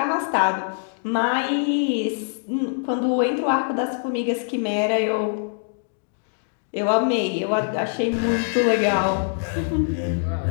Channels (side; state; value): right; silent; digital silence